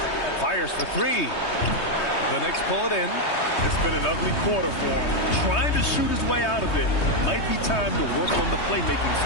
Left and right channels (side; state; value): right; late; 3.2 ms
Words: Fires for 3. The Knicks pull it in. It's been an ugly quarter for him. Trying to shoot his way out of it. Might be time to work on the playmaking